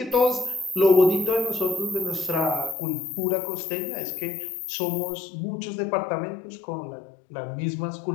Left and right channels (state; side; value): drops out; right; at 2.8 s